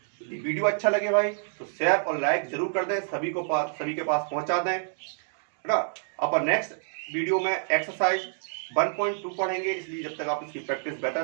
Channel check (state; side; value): silent; left; digital silence